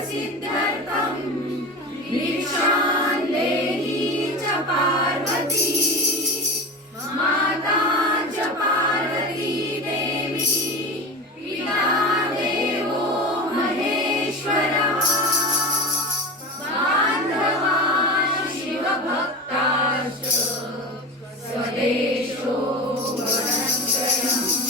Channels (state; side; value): normal; both; correlation 0.28